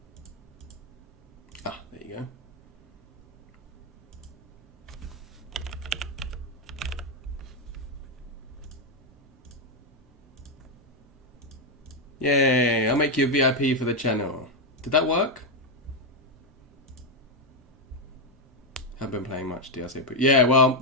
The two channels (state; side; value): normal; both; correlation 0.03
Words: Ah, there you go. Yay, I'll make you a VIP for the channel. Did that work? Haven't been playing much DLC, but yeah, well,